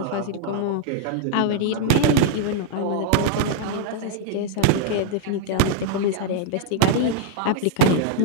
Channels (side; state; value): both; different; correlation 0.00